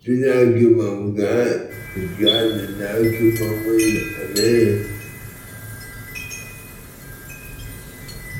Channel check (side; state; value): both; identical; correlation 1.00